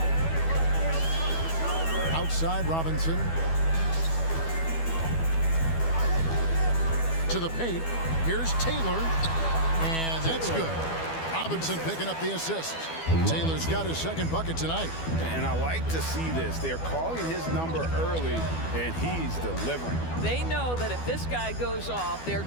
Outside Robinson. To the paint. Here's Taylor. And that's good. Robinson picking up the assist. Taylor's got his second bucket tonight. And I like to see this. They're calling his number early, and he's delivering. They know that if this guy goes off, their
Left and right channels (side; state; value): right; late; 12 ms